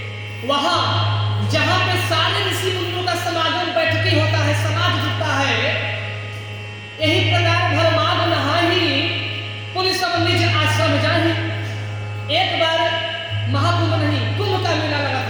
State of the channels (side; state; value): both; identical; correlation 1.00